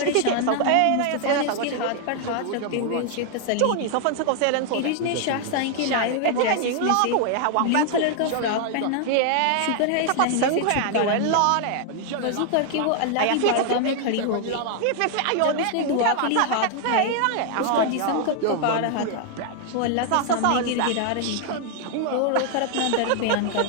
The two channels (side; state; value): both; different; correlation 0.00